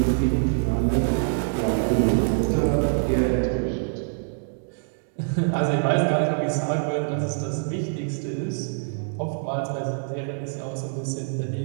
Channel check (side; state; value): left; silent; digital silence